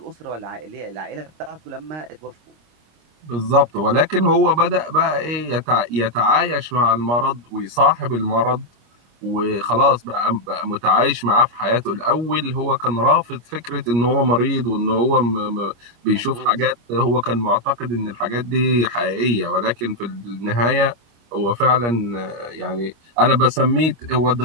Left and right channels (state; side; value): late; left; 25 ms